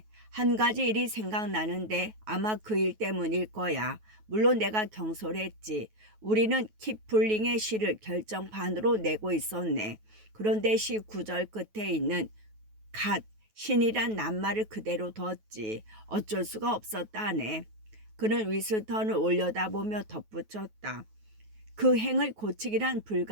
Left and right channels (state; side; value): late; left; 9.3 ms